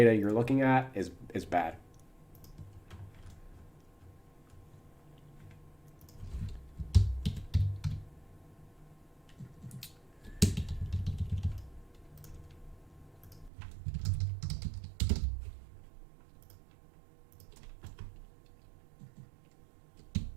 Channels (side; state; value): left; drops out; at 13.5 s